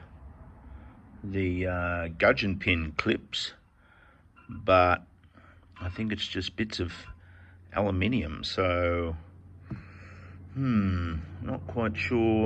the gudgeon pin clips, but I think it's just bits of aluminium, so not quite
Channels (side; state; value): both; identical; correlation 1.00